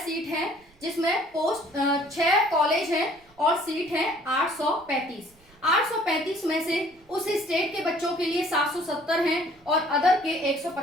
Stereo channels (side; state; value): right; noise; rumble, 30 dB below the sound